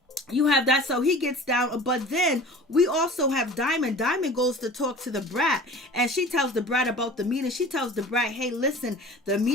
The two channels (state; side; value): normal; both; correlation 0.41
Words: you have that, so he gets down, but then we also have Diamond. Diamond goes to talk to the Brat, and she tells the Brat about the meeting. She tells the Brat, hey, listen, the